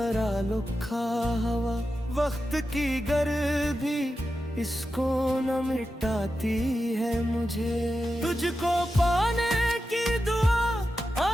लिखा हवा, वक्त की गर्मी इसको न मिटाती है मुझे। तुझको पाने की दुआ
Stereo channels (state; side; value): normal; both; correlation 0.91